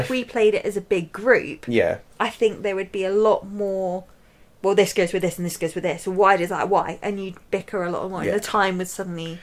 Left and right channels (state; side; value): identical; both; correlation 1.00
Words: we played it as a big group, yeah, I think there would be a lot more. Well, this goes with this and this goes with this. Why does that? Why? And you'd bicker a lot more, and the time would suddenly.